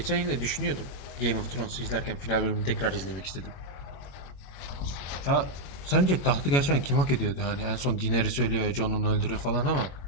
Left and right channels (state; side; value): late; right; 21 ms